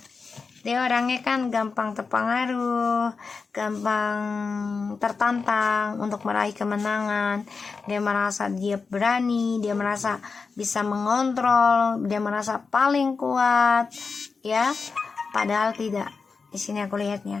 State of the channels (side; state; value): right; quieter; 4.8 dB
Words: Dia orangnya kan gampang terpengaruh, gampang tertantang untuk meraih kemenangan. Dia merasa dia berani, dia merasa bisa mengontrol, dia merasa paling kuat, ya. Padahal tidak. Di sini aku